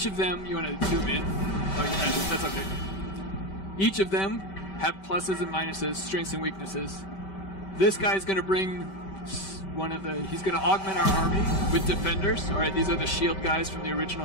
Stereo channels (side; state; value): right; late; 5.2 ms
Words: of them, you want to zoom in? Oh, that's okay. Each of them have pluses and minuses, strengths and weaknesses. This guy's going to bring he's going to augment our army with defenders. All right, these are the shield guys from the